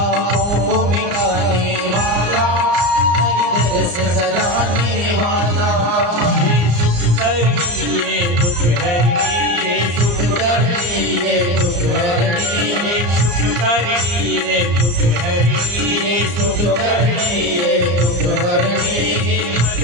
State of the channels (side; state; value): left; late; 34 ms